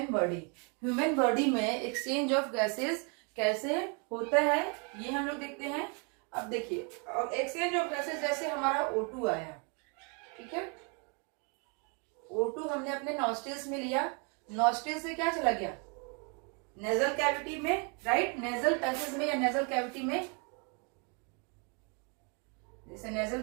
body. Human body में एक्सचेंज ऑफ गैसेस कैसे होता है, ये हम लोग देखते हैं। अब देखिए, एक्सचेंज ऑफ गैसेस, जैसे हमारा O2 आया, ठीक है, O2 हमने अपने नॉस्ट्रिल्स में लिया, नॉस्ट्रिल से क्या चला गया, नेजल कैविटी में, राइट। नेजल पैसेज में या नेजल कैविटी में, जैसे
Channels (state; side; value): quieter; left; 35.3 dB